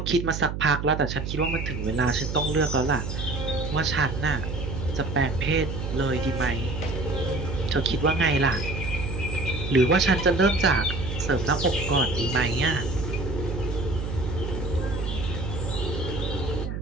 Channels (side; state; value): right; noise; hum, 5 dB below the sound